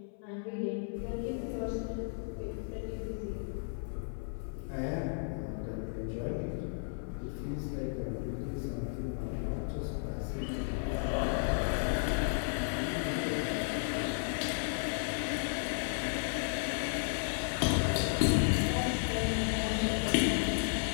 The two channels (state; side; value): silent; right; 55 dB below the other